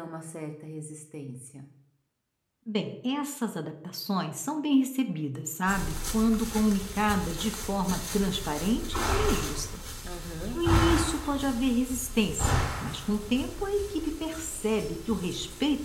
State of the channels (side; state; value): both; identical; correlation 1.00